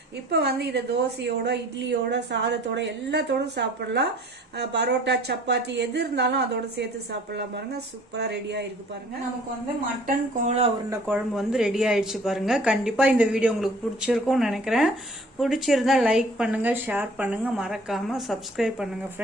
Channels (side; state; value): both; normal; correlation 0.52